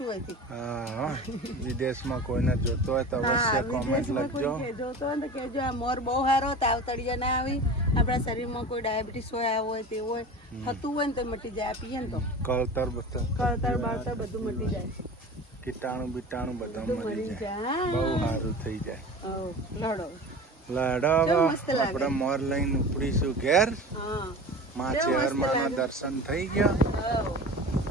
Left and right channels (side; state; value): both; normal; correlation 0.34